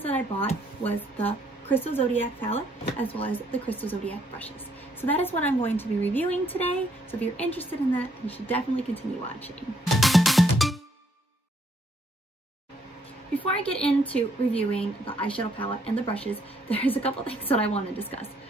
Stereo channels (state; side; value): normal; both; correlation 0.69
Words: that I bought was the Crystal Zodiac palette, as well as the Crystal Zodiac brushes. So that is what I'm going to be reviewing today. So if you're interested in that, you should definitely continue watching. Before I get into reviewing the eyeshadow palette and the brushes, there's a couple things that I want to discuss.